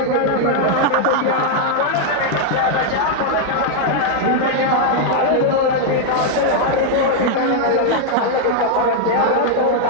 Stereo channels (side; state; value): both; different; correlation 0.00